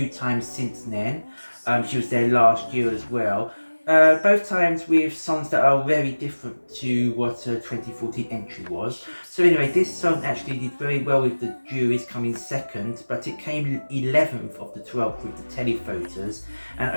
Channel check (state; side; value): inverted; both; correlation -1.00